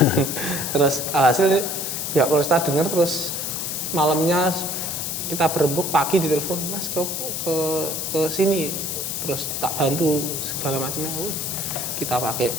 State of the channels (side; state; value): left; noise; hiss, 3 dB below the sound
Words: Terus alhasil pihak Polresta dengar, terus malamnya kita berembuk, pagi ditelepon, Mas ke sini, terus tak bantu segala macamnya. Kita pakai